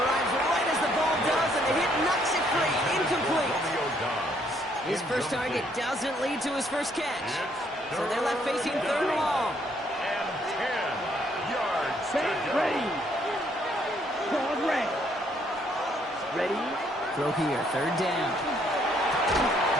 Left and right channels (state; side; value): normal; both; correlation 0.68